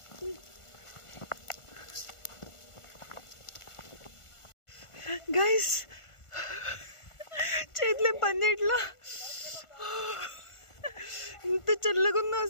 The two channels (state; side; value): late; right; 1.4 ms